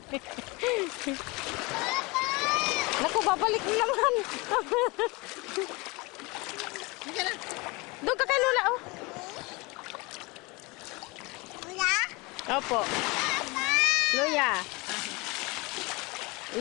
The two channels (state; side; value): quieter; right; 25.6 dB